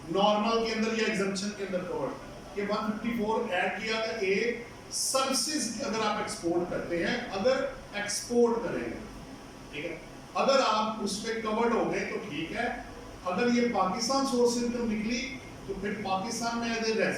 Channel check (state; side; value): identical; both; correlation 1.00